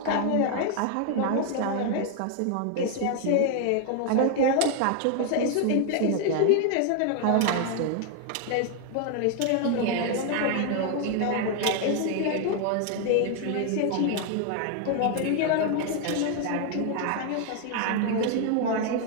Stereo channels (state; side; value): different; both; correlation 0.00